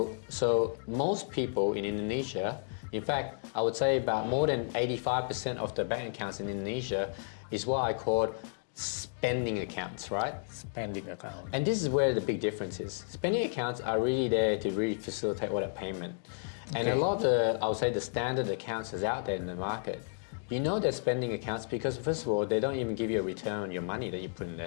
most people in Indonesia, in fact, I would say about more than 85% of the bank accounts in Indonesia is what I call spending accounts, right? Spending account. And this is where the big difference is. Spending accounts are really there to really facilitate all that payment. And a lot of the, I would say, the standard accounts is out there in the market. You know they're spending accounts because, first of all, they don't even give you a return on your money that you put in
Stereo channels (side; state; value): right; silent; digital silence